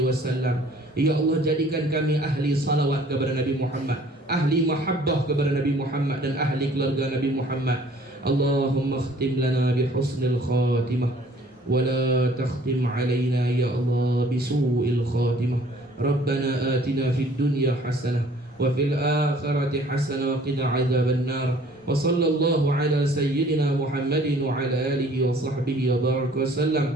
wasallam. Ya Allah, jadikan kami ahli salawat kepada Nabi Muhammad, ahli mahabbah kepada Nabi Muhammad dan ahli keluarga Nabi Muhammad. Allahumma khtim lana bi husnil khatimah ولا تختم علينا يا الله بسوء الخاتمة. ربنا آتنا في الدنيا حسنة وفي الآخرة حسنة وقنا عذاب النار. وصلى الله على سيدنا محمد وعلى آله وصحبه وبارك وسلم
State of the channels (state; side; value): normal; both; correlation 0.55